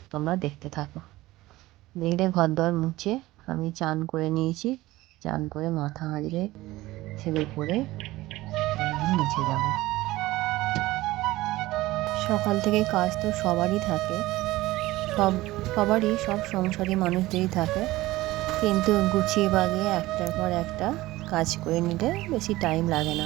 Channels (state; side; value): quieter; left; 18.0 dB